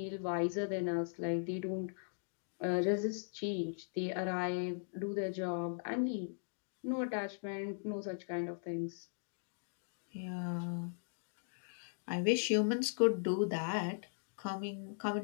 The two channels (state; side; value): silent; right; digital silence